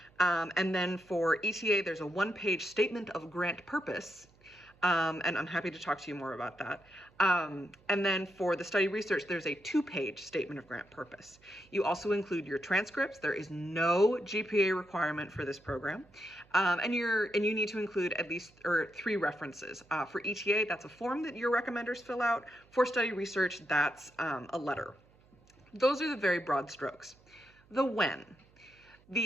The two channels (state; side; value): noise; right; hum, 29 dB below the sound